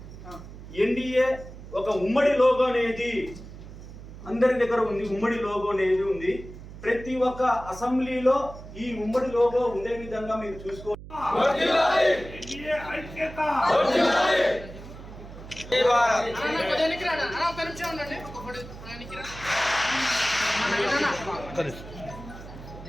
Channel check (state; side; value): noise; right; hum, 14 dB below the sound